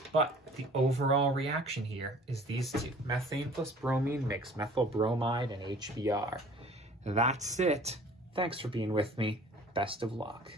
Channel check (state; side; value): normal; both; correlation 0.49